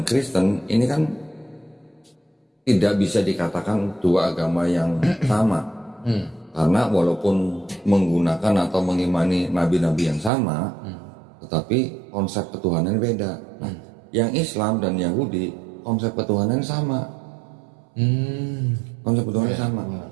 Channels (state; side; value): drops out; left; at 10.3 s